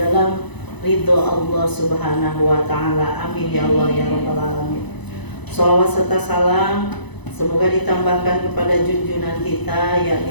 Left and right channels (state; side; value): late; right; 1.0 ms